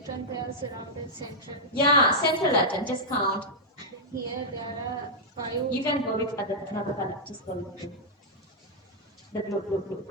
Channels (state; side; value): normal; both; correlation -0.07